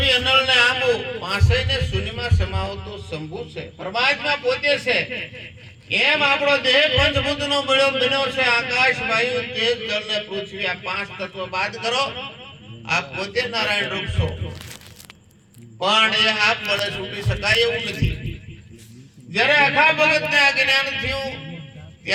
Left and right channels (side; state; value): both; identical; correlation 1.00